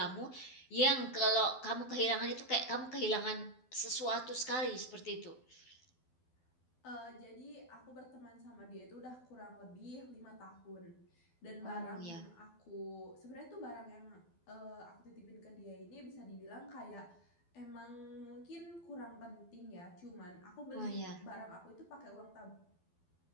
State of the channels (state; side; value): late; right; 12 ms